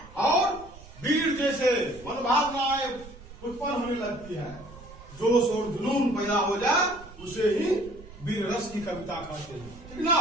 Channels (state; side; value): noise; right; rumble, 18 dB below the sound